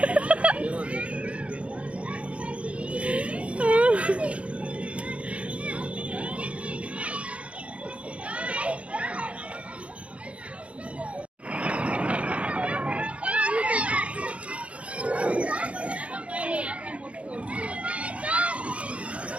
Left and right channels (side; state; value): left; late; 0.062 ms